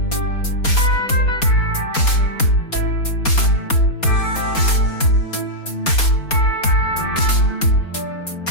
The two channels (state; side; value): late; right; 4.3 ms